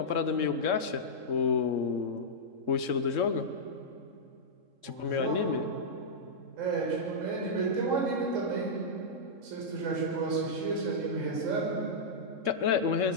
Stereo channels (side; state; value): left; late; 3.7 ms